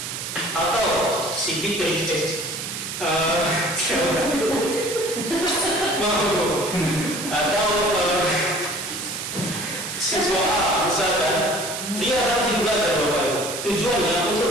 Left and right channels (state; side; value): noise; right; hiss, 6 dB below the sound